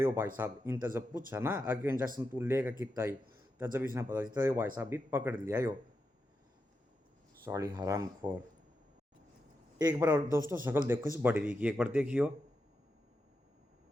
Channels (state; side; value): normal; both; correlation 0.87